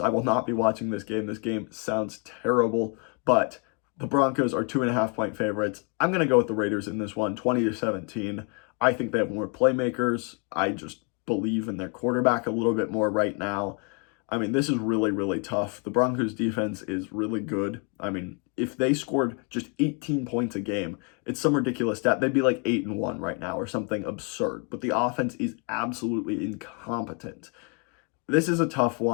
will not be watching this game. This game sounds terrible, but the Broncos are 2.5-point favorites. I'm going to go with the Raiders in this one, 20-17. I think they have more playmakers. I just believe in their quarterback a little bit more right now. I mean, this is really, really tough. The Broncos defense is really good. I mean, if they scored just 18 points a game, it's some ridiculous stat. They'd be like 8-1 right now or something absurd. But the offense is absolutely incompetent. This is a tough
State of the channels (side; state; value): right; quieter; 35.5 dB